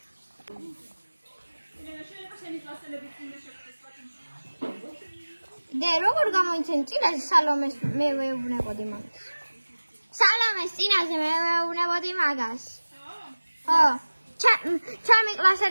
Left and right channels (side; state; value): both; inverted; correlation -1.00